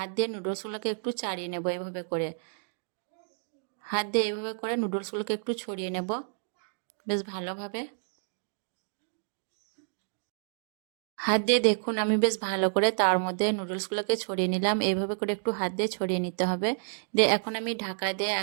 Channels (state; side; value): silent; left; digital silence